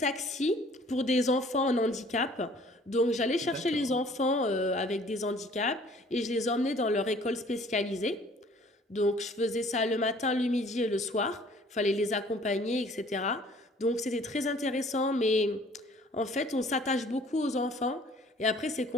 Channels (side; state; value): both; normal; correlation 0.55